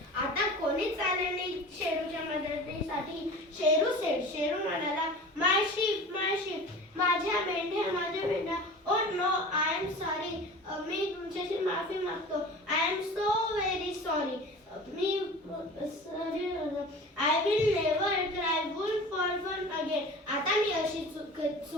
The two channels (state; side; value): normal; both; correlation 0.38